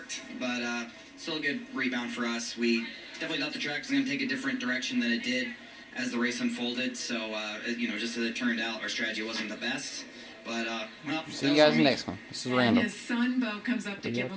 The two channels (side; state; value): both; identical; correlation 1.00